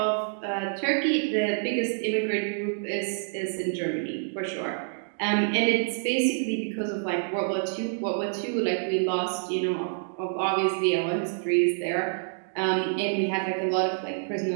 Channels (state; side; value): silent; left; digital silence